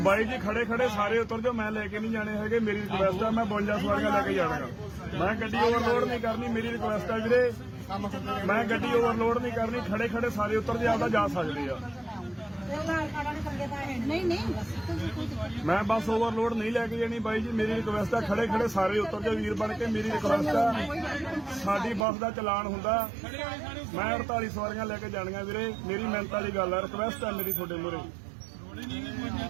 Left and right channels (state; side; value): drops out; left; at 22.1 s